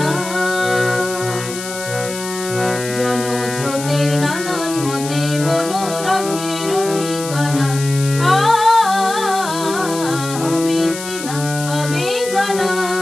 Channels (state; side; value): noise; left; hiss, 10 dB below the sound